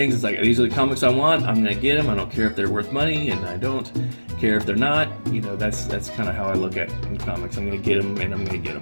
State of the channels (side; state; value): both; inverted; correlation -1.00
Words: It's like, these are the comics I want. I'm gonna get them. I don't care if they're worth money, and I don't care if they're not. You know, that's kind of how I look at in comics. I'm gonna get them, and I'm gonna get